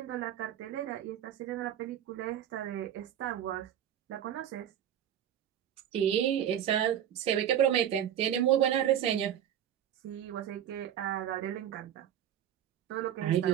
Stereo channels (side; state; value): left; quieter; 10.4 dB